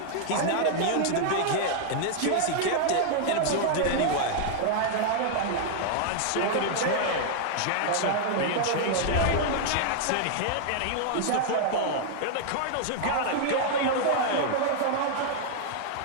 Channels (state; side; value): different; both; correlation -0.01